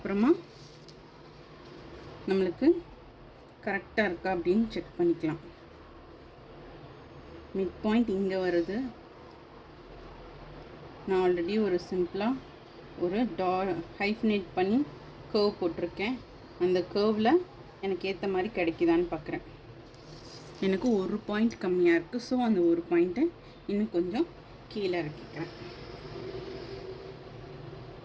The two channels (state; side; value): identical; both; correlation 1.00